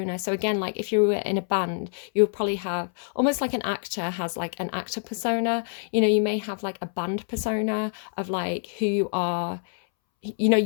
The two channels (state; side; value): silent; right; 61 dB below the other